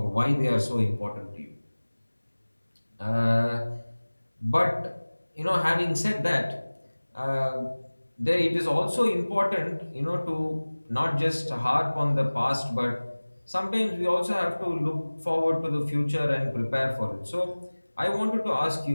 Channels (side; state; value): both; inverted; correlation -1.00